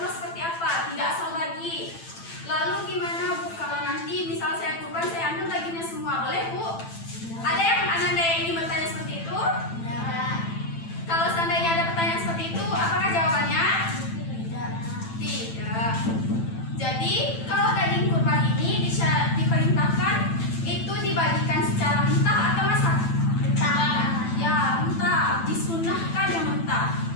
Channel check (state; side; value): late; right; 9.0 ms